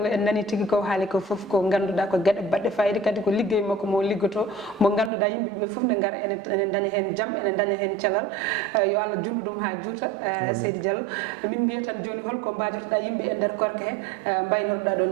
en nani tigui ko haali ko foof ko ganduɗa ko gueɗe baɗɗe fayida kadi ko liggey makko mo liggoto mo ganduɗa yimɓeɓe foof ne gara ene daña hen jaam ene daña hen cellal yo Allah junnu ɗum ha juuta seydi Diallo min mbiya tan joni holko mbajotoɗa yimɓe e nder korka he mbaynorɗa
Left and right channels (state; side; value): drops out; left; at 5.1 s